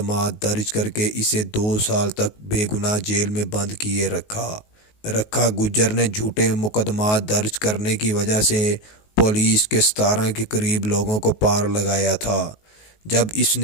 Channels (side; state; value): right; late; 19 ms